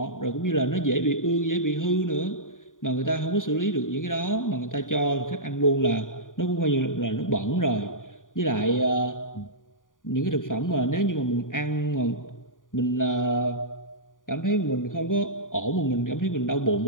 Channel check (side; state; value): right; late; 0.88 ms